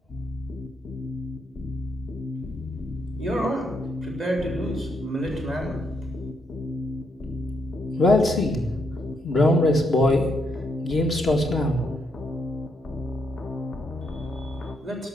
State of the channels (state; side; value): normal; both; correlation 0.78